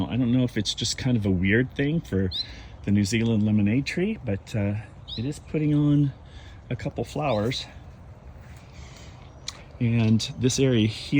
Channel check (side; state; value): both; identical; correlation 1.00